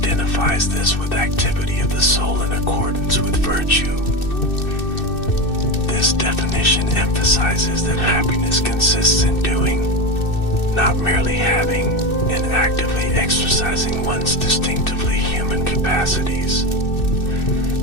this with activity of the soul in accordance with virtue. This definition emphasizes that happiness consists in doing, not merely having, and actively exercising one's distinctively human capacities.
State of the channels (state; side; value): late; right; 2.6 ms